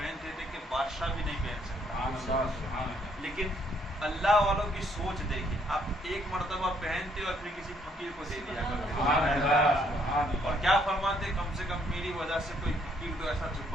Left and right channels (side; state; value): both; normal; correlation 0.68